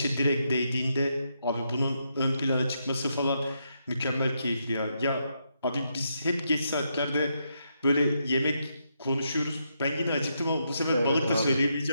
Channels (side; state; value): both; inverted; correlation -0.81